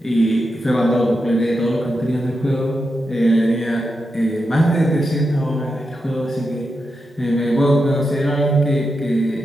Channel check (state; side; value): normal; both; correlation 0.87